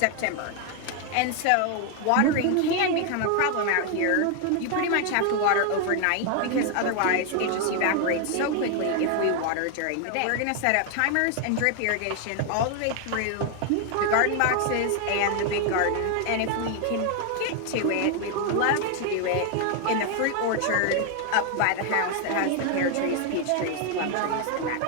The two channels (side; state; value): both; different; correlation 0.01